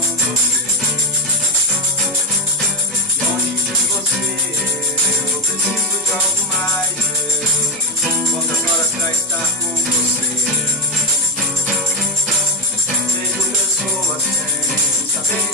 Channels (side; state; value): both; normal; correlation 0.12